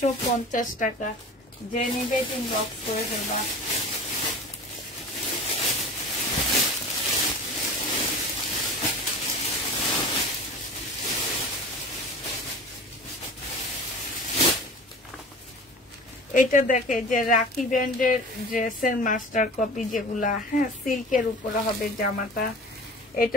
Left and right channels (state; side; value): normal; both; correlation 0.38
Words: টাকা। যে নিবে ইনবক্স করে ফেলবা। এটা দেখে যে রাখি ব্র্যান্ডের ড্রেসের মাস্টার কপি যেগুলা, হ্যাঁ, সিল্কের উপরে হবে জামাটা। এটা